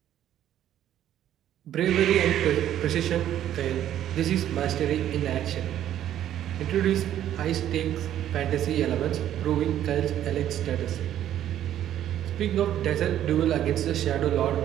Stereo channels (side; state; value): left; quieter; 11.4 dB